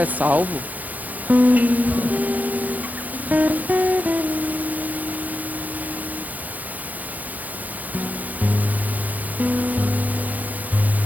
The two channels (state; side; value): late; left; 0.080 ms